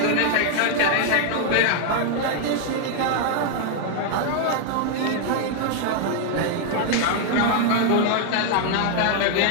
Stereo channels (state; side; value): different; both; correlation 0.00